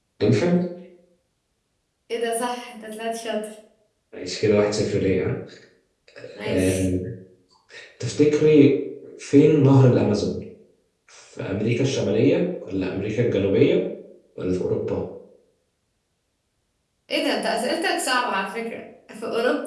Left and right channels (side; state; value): both; identical; correlation 1.00